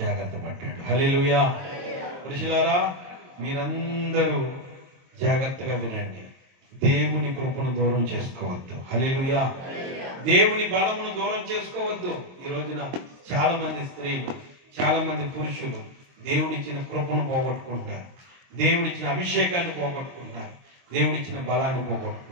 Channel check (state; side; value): late; left; 22 ms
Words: పడ్డాడు. హల్లెలూయా. పురుషులారా మీరందరూ జాగ్రత్తగా వినండి, దేవుని కృపను దూరం చేసుకోవద్దు. హల్లెలూయా. దేవుని బలమును దూరం చేసుకోవద్దు. ఈ రోజున చాలా మంది స్త్రీలు, చాలా మంది పురుషులు దేవుడిచ్చిన కృపను పోగొట్టుకుంటున్నారు, దేవుడిచ్చిన అభిషేకాన్ని పోగొట్టుకుంటున్నారు, దేవుడిచ్చిన బలాన్ని